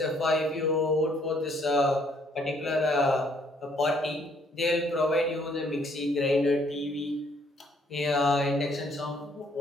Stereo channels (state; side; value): normal; both; correlation 0.65